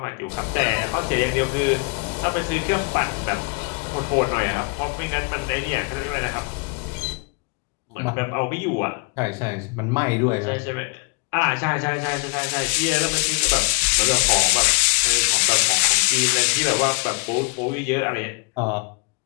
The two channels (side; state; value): right; quieter; 33.6 dB